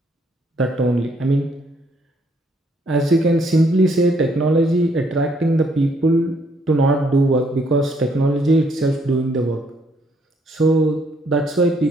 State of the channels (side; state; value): both; normal; correlation 0.69